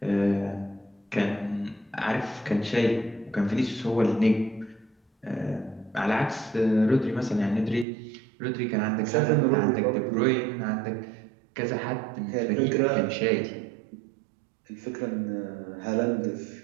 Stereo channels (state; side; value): drops out; left; at 7.9 s